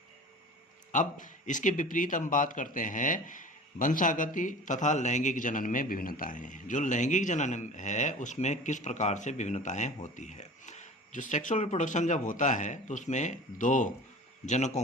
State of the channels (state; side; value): normal; both; correlation 0.40